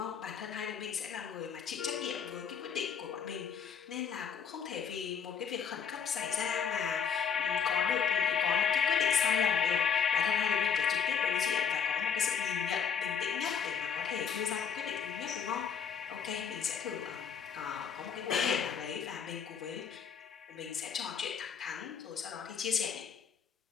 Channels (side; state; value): right; quieter; 7.1 dB